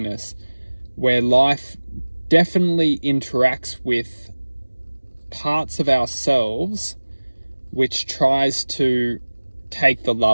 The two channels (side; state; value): both; inverted; correlation -1.00